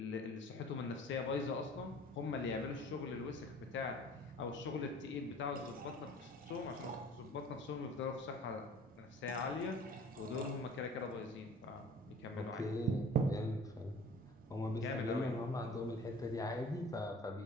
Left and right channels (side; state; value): both; normal; correlation 0.47